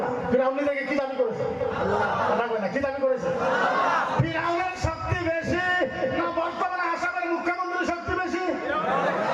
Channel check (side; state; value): both; identical; correlation 1.00